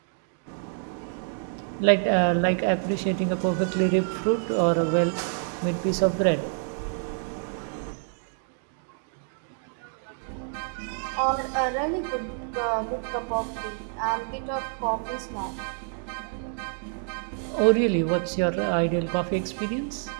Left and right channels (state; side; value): silent; left; 56 dB below the other